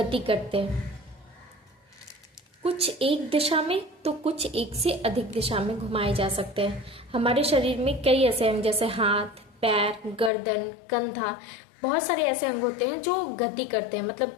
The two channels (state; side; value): drops out; right; at 10.3 s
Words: करते हैं, कुछ एक दिशा में तो कुछ एक से अधिक दिशा में घुमाए जा सकते हैं। हमारे शरीर में कई ऐसे अंग जैसे हाथ, पैर, गर्दन, कंधा, बहुत सारे ऐसे अंग होते हैं जो गति करते हैं,